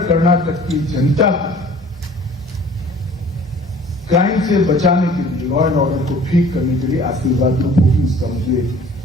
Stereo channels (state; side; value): normal; both; correlation 0.49